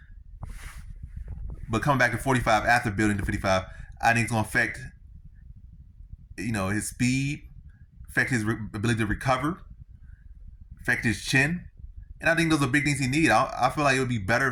But coming back to 45 after building to 55, I think it's going to affect, his speed, affect his ability to recover, affect his chin. And I think those are big things he needs. I feel like it would be better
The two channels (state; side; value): identical; both; correlation 1.00